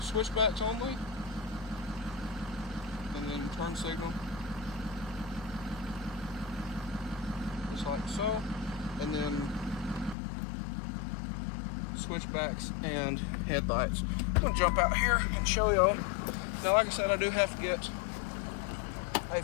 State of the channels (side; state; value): right; drops out; at 10.2 s